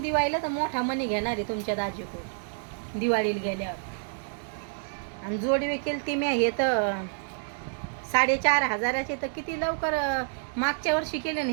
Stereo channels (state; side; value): silent; left; digital silence